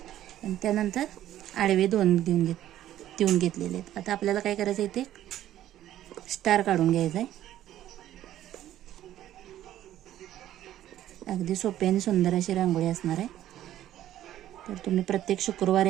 आणि त्यानंतर आडवे 2 देऊन घेतलेले आहेत. आता आपल्याला काय करायचं आहे, ते स्टार काढून घ्यायचा आहे. अगदी सोपी आणि सुंदर अशी रांगोळी असणार आहे. तर तुम्ही प्रत्येक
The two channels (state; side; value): quieter; left; 12.6 dB